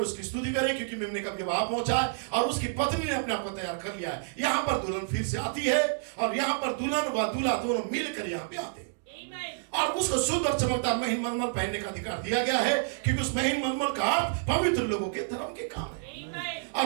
स्तुति करें, क्योंकि मेमने का विवाह पहुंचा है और उसकी पत्नी ने अपने आप को तैयार कर लिया है। यहाँ पर दुल्हन फिर से आती है और यहाँ पर दुल्हन व दूल्हा दोनों मिलकर यहाँ पे आते हैं और उसको शुद्ध और चमकदार महीन मलमल पहनने का अधिकार दिया गया है, क्योंकि उस महीन मलमल का अर्थ पवित्र लोगों के धर्म के काम है।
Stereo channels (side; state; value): left; silent; digital silence